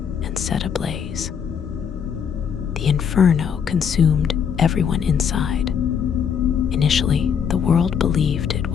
and set ablaze. The inferno consumed everyone inside. Initially, the world believed it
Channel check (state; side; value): quieter; right; 7.4 dB